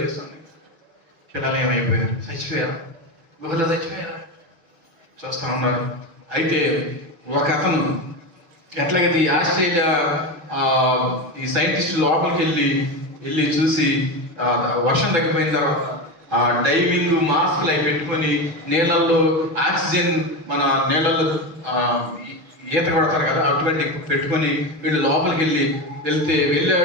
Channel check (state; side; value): late; left; 6.5 ms